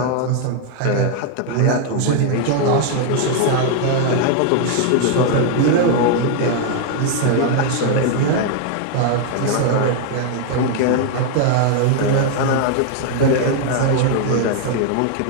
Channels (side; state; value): both; different; correlation 0.00